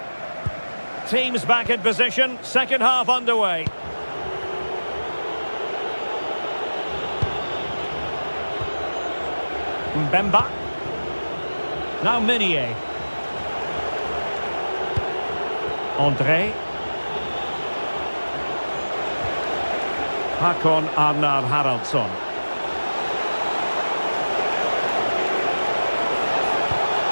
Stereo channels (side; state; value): both; inverted; correlation -1.00